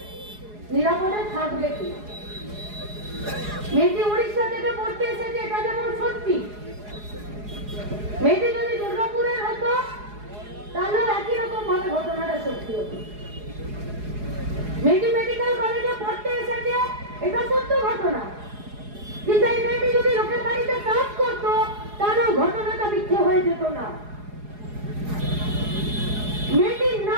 নিরাপদে থাকবে কি। মেয়েটি উড়িষ্যা থেকে পড়তে এসেছে, এটা যেমন সত্যি। মেয়েটি যদি দুর্গাপুরের হতো তাহলে একই রকম ভাবে ঘটনাটা সত্যি হতো। মেয়েটি মেডিকেল কলেজে পড়তে এসেছে, এটা সত্য ঘটনা। কিন্তু এই মেয়েটি যদি লোকের বাড়িতে কাজ করতো তাহলে ঘটনাটা মিথ্যে হয়ে যেত না। মেয়েটির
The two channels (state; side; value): late; left; 4.8 ms